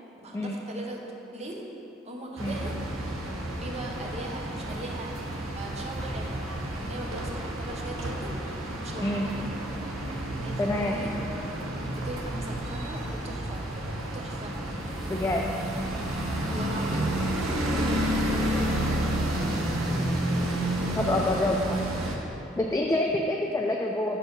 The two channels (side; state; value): both; normal; correlation 0.65